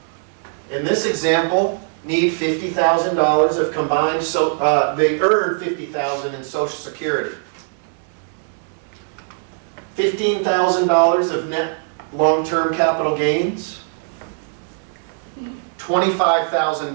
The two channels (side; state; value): left; silent; 65 dB below the other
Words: in this example, need $50,000 of combined, they earn $50,000 in Social Security. $15,000 of net long-term capital gains,